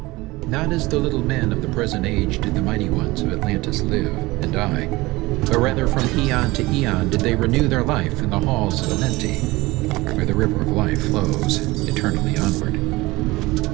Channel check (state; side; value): quieter; left; 20.8 dB